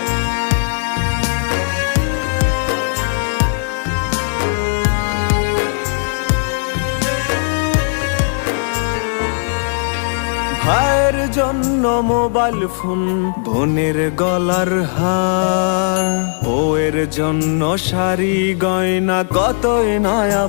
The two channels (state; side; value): silent; right; digital silence